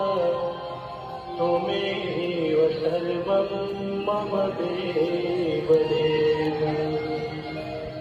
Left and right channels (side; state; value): both; identical; correlation 1.00